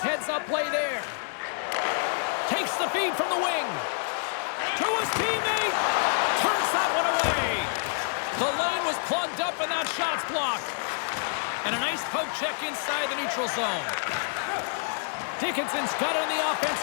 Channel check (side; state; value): right; silent; digital silence